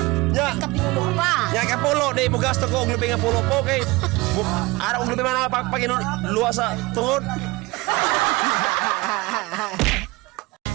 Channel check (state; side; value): quieter; left; 22.6 dB